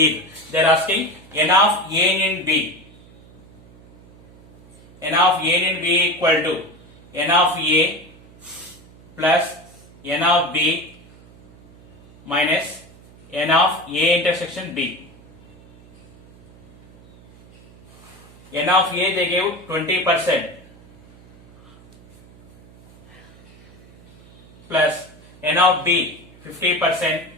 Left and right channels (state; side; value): noise; right; hum, 24 dB below the sound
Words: They are asking n of A in B. N of A in B equal to n of A plus n of B minus n of A intersection B. N of A they gave 20% plus n of B 50%,